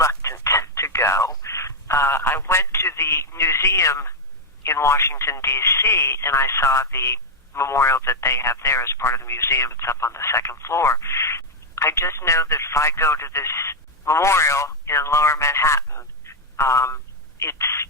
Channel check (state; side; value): normal; both; correlation 0.00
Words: to go. I went to the museum in Washington, D.C., and I saw the memorial that they have there as part of the museum. It's up on the second floor. I just know that if I go to this memorial in Lower Manhattan, I'm